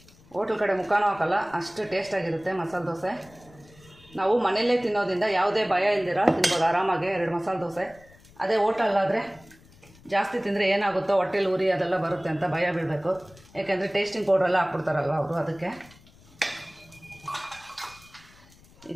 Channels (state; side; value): noise; left; rumble, 26 dB below the sound